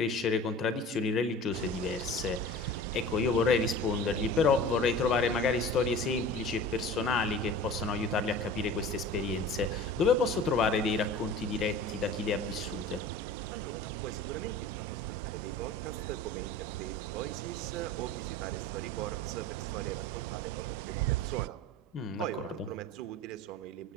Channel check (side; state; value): both; normal; correlation 0.38